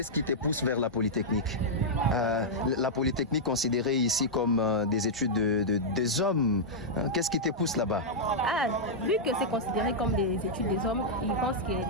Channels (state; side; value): normal; both; correlation -0.07